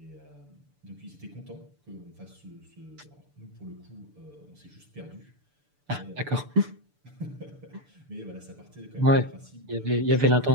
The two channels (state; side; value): late; left; 6.8 ms